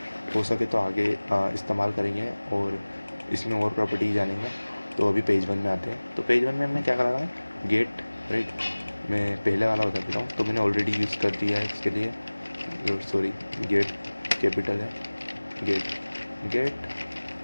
हो सके तो आगे इस्तेमाल करेंगे और इसमें और प्रॉपर्टी जानेंगे। तो अभी पेज 1 में आते हैं। तो पेज 1 में हमने क्या करा है, गेट राइट। मैं पहले वाला बता देता हूँ, तो मैंने ऑलरेडी यूज़ कर दिया है इसके लिए, सॉरी गेट कैपिटल है, गेट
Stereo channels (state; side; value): inverted; both; correlation -1.00